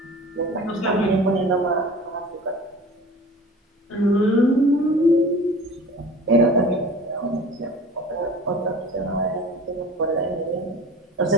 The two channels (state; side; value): normal; both; correlation 0.41